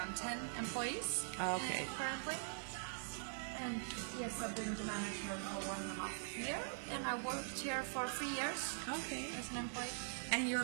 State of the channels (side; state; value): left; silent; digital silence